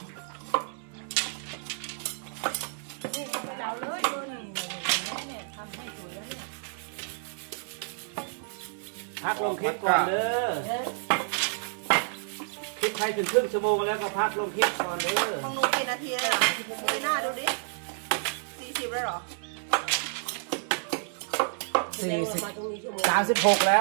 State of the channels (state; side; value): silent; left; 58 dB below the other